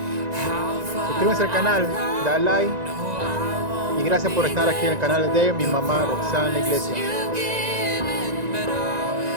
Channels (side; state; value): left; late; 1.9 ms